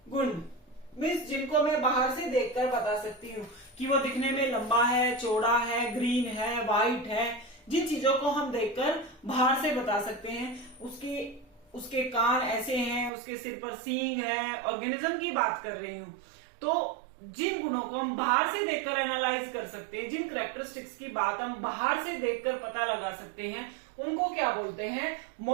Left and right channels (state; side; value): drops out; left; at 13.1 s